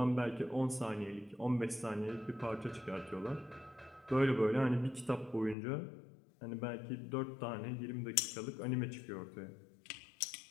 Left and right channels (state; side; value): drops out; right; at 5.6 s